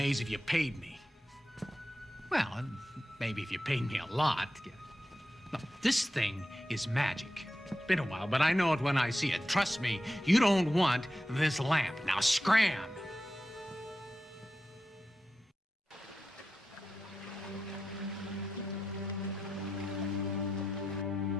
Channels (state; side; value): normal; both; correlation 0.90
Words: if you paid me. Well, maybe if you paid me a lot. No, this thing is magic. It's been a while, but I know it when I see it. Trust me, you don't want this lamp. Now scram!